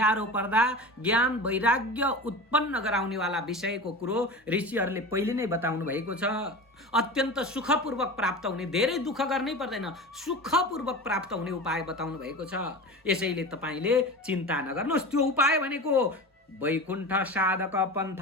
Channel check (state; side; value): normal; both; correlation 0.31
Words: पर्दा ज्ञान वैराग्य उत्पन्न गराउनेवाला विषयको कुरो ऋषिहरूले पहिले नै बताउनु भएको छ। अत्यन्त सुखपूर्वक प्राप्त हुने, धेरै दुःख गर्नै पर्दैन, सुखपूर्वक प्राप्त हुने उपाय बताउनु भएको छ। यसैले तपाईँले चिन्ता नगर्नुहोस्। त्यो उपाय भनेको वैकुण्ठ साधक